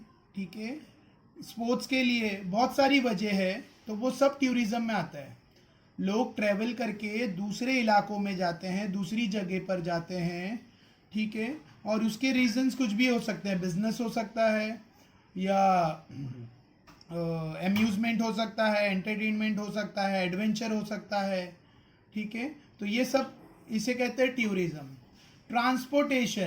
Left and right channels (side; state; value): both; identical; correlation 1.00